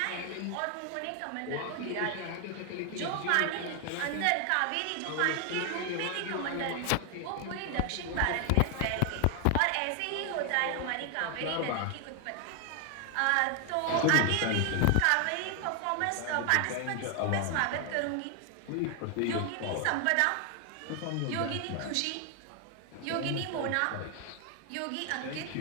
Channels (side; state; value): both; different; correlation 0.00